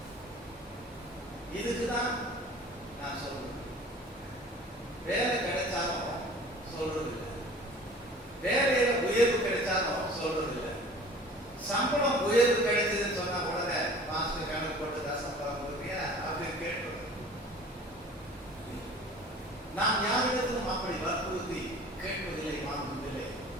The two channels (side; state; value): both; normal; correlation 0.45